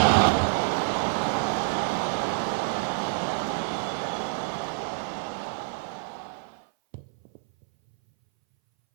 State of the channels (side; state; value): left; silent; 59 dB below the other